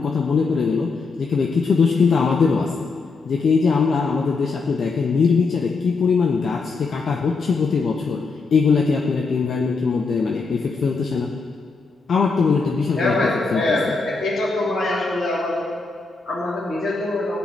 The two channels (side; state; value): right; quieter; 4.3 dB